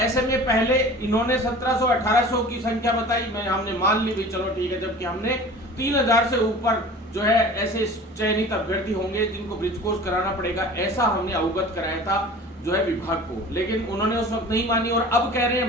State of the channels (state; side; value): normal; both; correlation 0.41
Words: में पहले इन्होंने 1700-1800 की संख्या बताई, हमने मान ली भी चलो ठीक है, जबकि हमने 3000 से ऊपर जो है ऐसे चयनित अभ्यर्थी होंगे जिनको ब्रिज कोर्स कराना पड़ेगा, ऐसा हमने अवगत कराया था जो है विभाग को। लेकिन उन्होंने उस वक्त नहीं मानी और अब कह रहे हैं